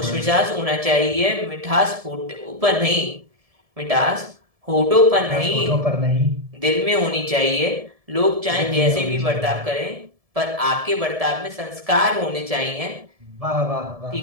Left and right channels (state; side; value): late; left; 1.7 ms